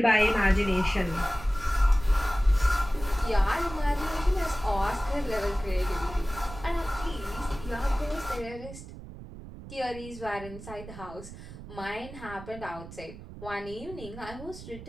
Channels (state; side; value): noise; right; rumble, 14 dB below the sound